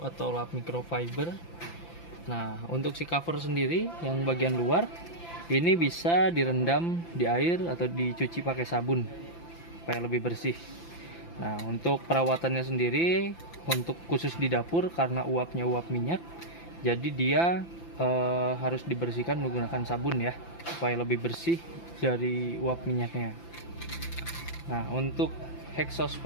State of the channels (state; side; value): late; right; 5.9 ms